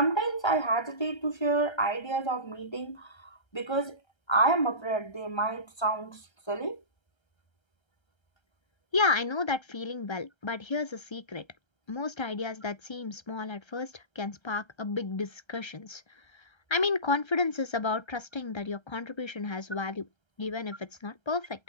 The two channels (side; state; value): right; late; 1.3 ms